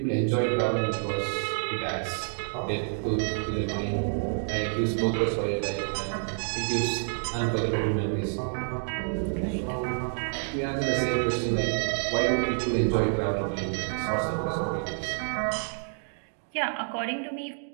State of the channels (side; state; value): left; silent; digital silence